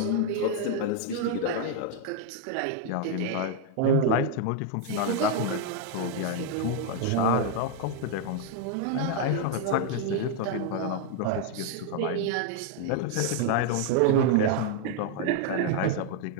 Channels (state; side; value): different; both; correlation 0.00